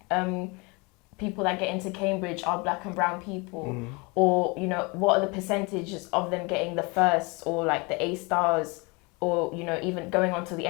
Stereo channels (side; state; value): right; quieter; 28.1 dB